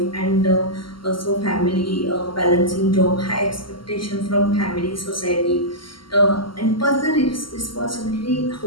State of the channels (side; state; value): right; late; 0.73 ms